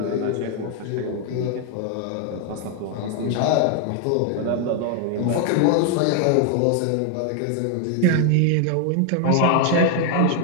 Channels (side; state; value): both; different; correlation 0.00